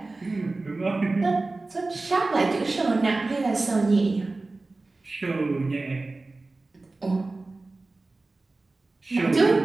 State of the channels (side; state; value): left; quieter; 3.3 dB